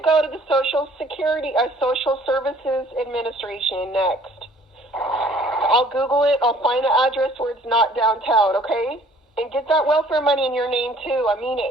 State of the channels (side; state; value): both; normal; correlation 0.56